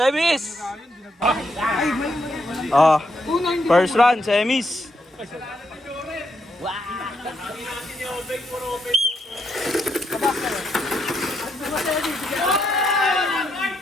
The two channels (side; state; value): both; normal; correlation 0.78